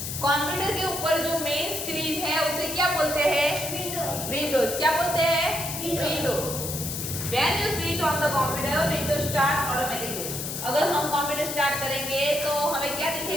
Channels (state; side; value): noise; left; hiss, 5 dB below the sound